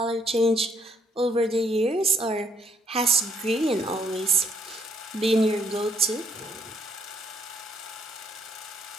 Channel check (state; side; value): normal; both; correlation 0.70